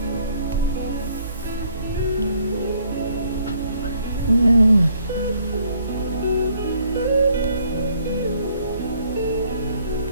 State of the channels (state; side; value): inverted; both; correlation -0.65